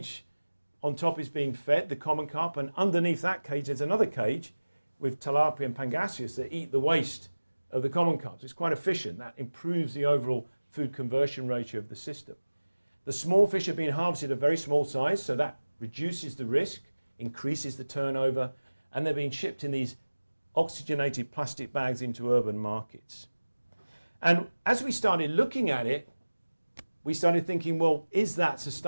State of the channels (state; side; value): inverted; both; correlation -1.00